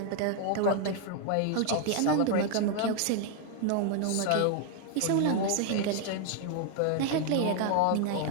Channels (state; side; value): different; both; correlation 0.00